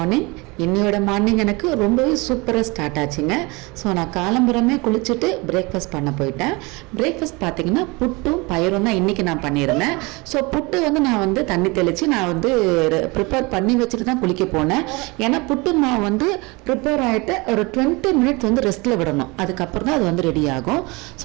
இன்னையோட morning எனக்கு ரொம்பவே சூப்பராக ஸ்டார்ட் ஆச்சுங்க. ஸோ நான் காலம்புறமே குளிச்சுட்டு பிரேக்ஃபாஸ்ட் பண்ண போயிட்டேன். பிரேக்ஃபாஸ்ட் பார்த்தீங்கன்னா புட்டும் பயிரும் தான் இன்றைக்கி நான் பண்ணியிருந்தேன். ஸோ புட்டு நான் தண்ணி தெளித்து நான் ப்ரிப்பேர் பண்ணி வச்சுட்டு தான் குளிக்க போனேன். ஏன்னா புட்டு மாவு ப்ரிப்பேர் ஆகிட்டு ஒரு 20 மினிட்ஸ் ரெஸ்ட்டில் விடணும். அதுக்கப்புறம் தான் அது ரெடி ஆகும்.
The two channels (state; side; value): quieter; left; 25.8 dB